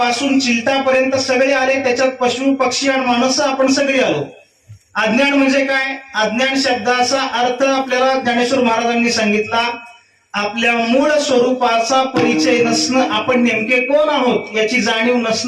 चिलटापर्यंत सगळे आले. त्याच्यात पशु पक्षी आणि माणसं आपण सगळे आलो. अज्ञान म्हणजे काय? अज्ञान शब्दाचा अर्थ आपल्याला ज्ञानेश्वर महाराजांनी सांगितला, आपल्या मूळ स्वरूपाचा परिचय नसणं, आपण नेमके कोण आहोत याची जाणीव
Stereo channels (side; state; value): both; identical; correlation 1.00